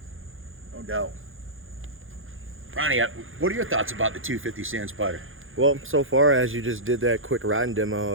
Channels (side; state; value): left; late; 0.59 ms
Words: no doubt. Ronnie, what are your thoughts about the 250 Sand Spider? Well, so far as you just did that quick riding